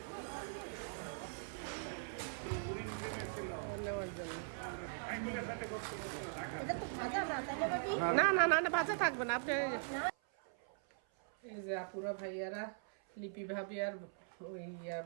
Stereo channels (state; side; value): silent; left; 51 dB below the other